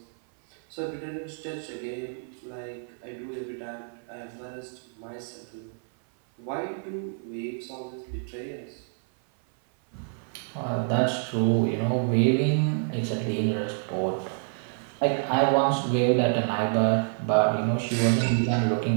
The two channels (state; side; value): silent; left; 57 dB below the other